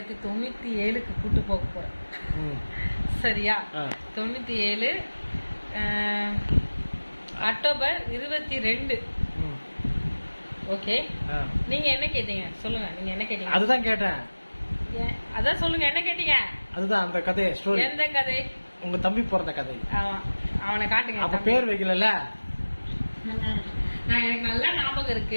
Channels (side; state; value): both; inverted; correlation -1.00